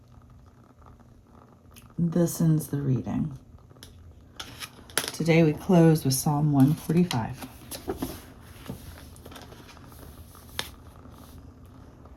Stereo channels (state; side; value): identical; both; correlation 1.00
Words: This ends the reading. Today we close with Psalm 145.